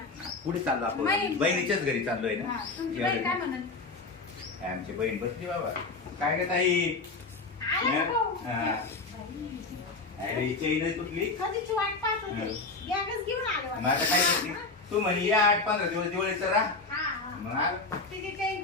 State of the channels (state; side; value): quieter; right; 3.7 dB